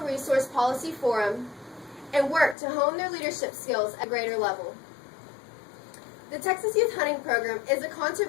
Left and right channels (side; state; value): right; drops out; at 2.6 s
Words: resource policy forum, and work to hone their leadership skills at a greater level. The Texas Youth Hunting Program is a